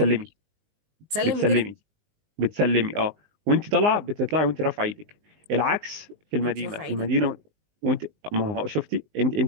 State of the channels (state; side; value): late; left; 19 ms